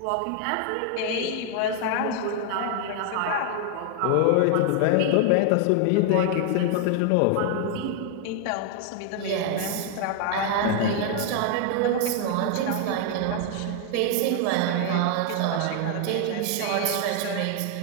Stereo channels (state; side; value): different; both; correlation 0.00